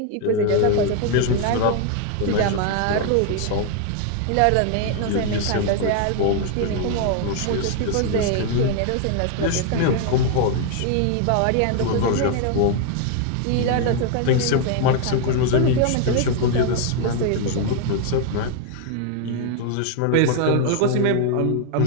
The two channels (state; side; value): different; both; correlation 0.01